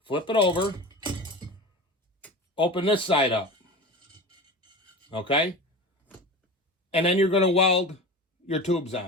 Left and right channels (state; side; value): normal; both; correlation 0.31